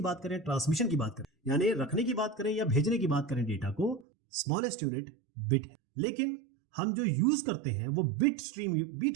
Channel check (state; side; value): drops out; left; at 4.0 s